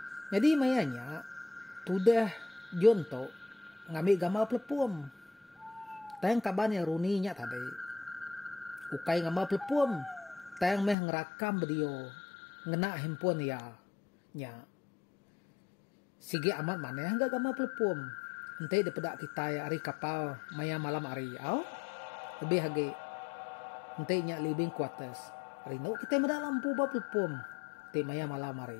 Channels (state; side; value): drops out; right; at 11.0 s